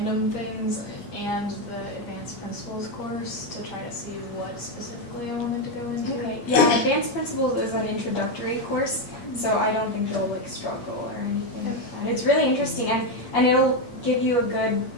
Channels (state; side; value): late; right; 8.5 ms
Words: things and the advanced principles course to try to see what specifically I wanted to go into. Okay, yeah, advanced principles is an introductory course, so I don't think you'll like struggle or anything like that. It's really interesting, and it'll give you a good